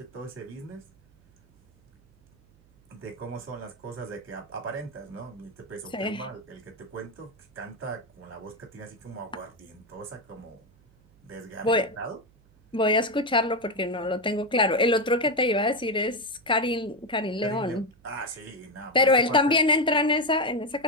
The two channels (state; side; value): noise; right; hum, 30 dB below the sound